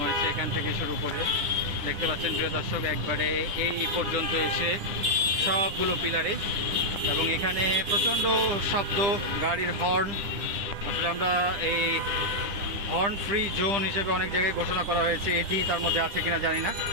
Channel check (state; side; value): late; left; 10 ms